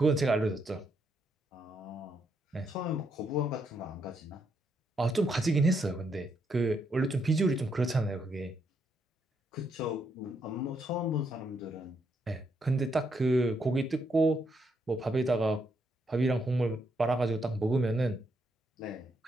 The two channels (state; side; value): normal; both; correlation 0.77